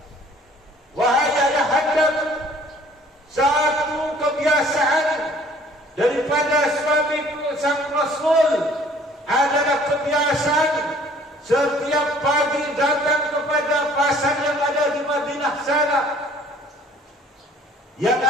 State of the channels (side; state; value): both; normal; correlation 0.55